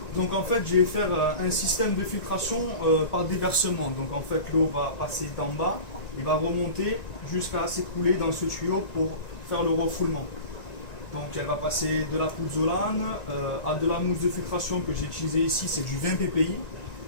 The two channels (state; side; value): late; right; 1.9 ms